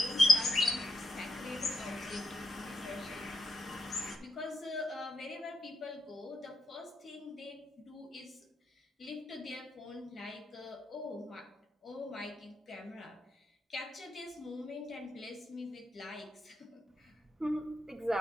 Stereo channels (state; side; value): normal; both; correlation 0.83